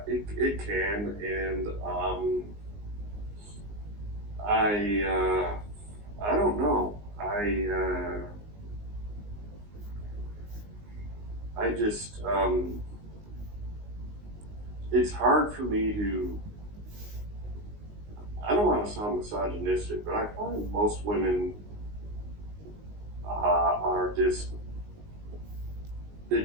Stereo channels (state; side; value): late; left; 19 ms